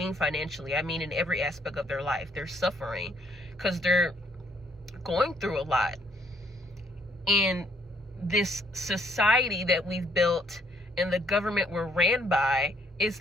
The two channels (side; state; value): both; normal; correlation 0.67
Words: financially. I mean in every aspect of their life. They're suffering because they're going through a lot. And this society that we've built and the government we're ran by